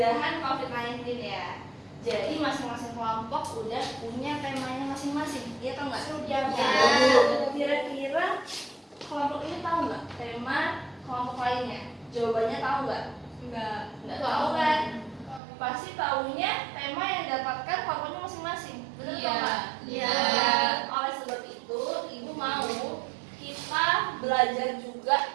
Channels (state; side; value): drops out; left; at 15.4 s